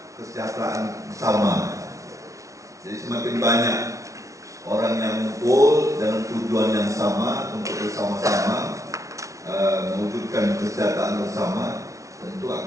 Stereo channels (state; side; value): late; left; 0.15 ms